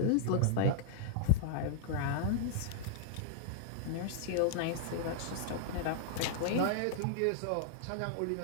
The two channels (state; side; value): different; both; correlation -0.01